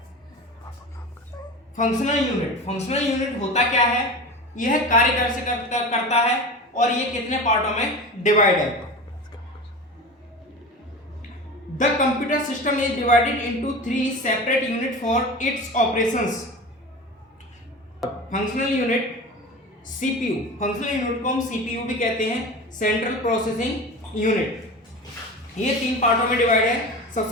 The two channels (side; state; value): both; normal; correlation 0.31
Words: फंक्शनल यूनिट होता क्या है, यह कार्य कैसे करता है और ये कितने पार्टों में डिवाइड है। The computer system is divided into 3 separate unit for its operations. Functional unit CPU, functional unit को हम CPU भी कहते हैं, सेंट्रल प्रोसेसिंग यूनिट। ये 3 पार्टों में डिवाइड है।